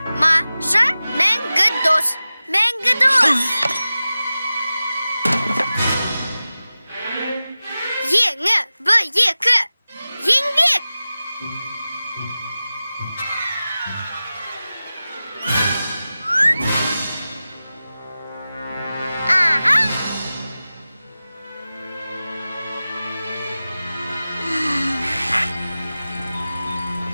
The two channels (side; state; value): both; inverted; correlation -0.96